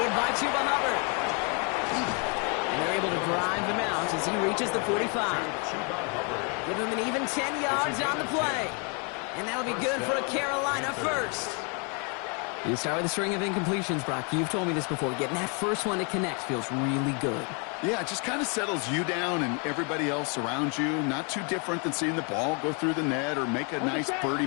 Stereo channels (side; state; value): right; quieter; 35.8 dB